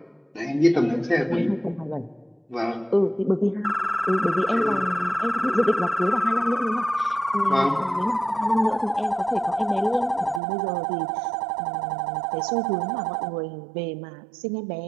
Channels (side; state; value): left; drops out; at 10.4 s